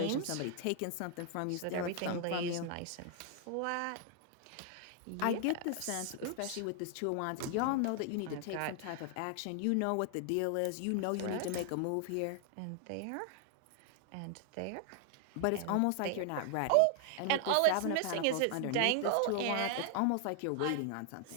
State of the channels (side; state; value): both; different; correlation 0.00